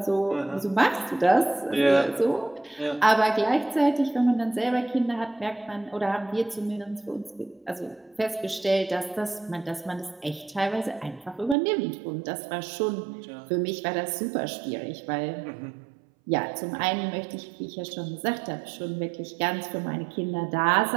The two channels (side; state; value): left; drops out; at 11.6 s